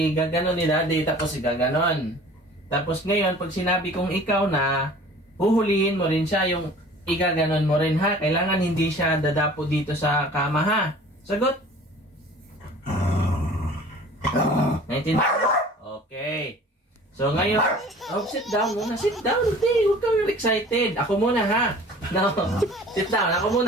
ni Daddy, tapos igaganon. Tapos ngayon, pag sinabi kong ikaw na, huhulihin mo rin siya, yung igaganon mo rin, ha? Kailangan hindi siya dadapo dito sa kama, ha? Sagot? Naintindihan? Okay. So ngayon, sit down muna. Sit down, hindi. Huwag kang excited. Ako muna, ha? No. Sit down, ako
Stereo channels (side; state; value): both; normal; correlation 0.46